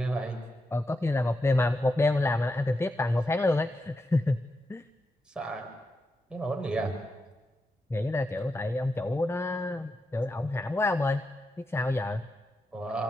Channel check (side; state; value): both; normal; correlation 0.87